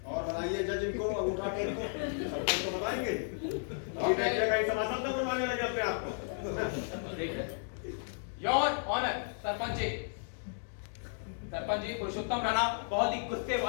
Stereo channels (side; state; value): right; silent; digital silence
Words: और बताइए जज इनको अंगूठा टेक को सरपंच को बताएंगे। अभी देखिए कहीं समाचार तो बनवाने लगे अपने आप को। योर ऑनर, सरपंच जी, सरपंच जी पुरुषोत्तम राणा बहुत ही गुस्से